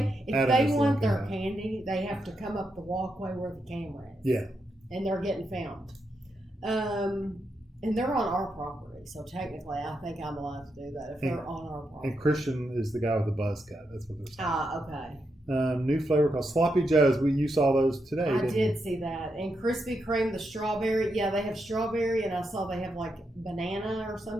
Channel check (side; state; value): both; normal; correlation 0.84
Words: if they want their candy, they have to come up the walkway where the camera is. Yeah. And they're getting filmed. And they're on our property, so technically I think I'm allowed to do that if they're on our property. And Christian is the guy with the buzz cut. That's what they're saying. Okay. New flavor called Sloppy Joe's. You saw those today, I didn't did you? see that. And Krispy Kreme, the strawberry. Yeah, they have strawberry, and I saw they have like banana or